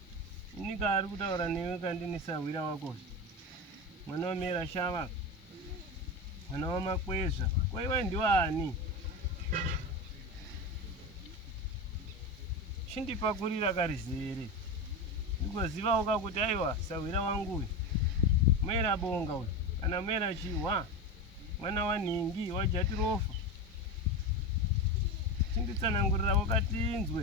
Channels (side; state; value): both; normal; correlation 0.21